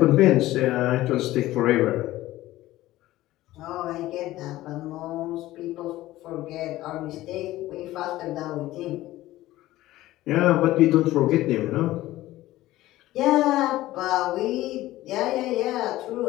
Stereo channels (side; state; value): right; quieter; 16.2 dB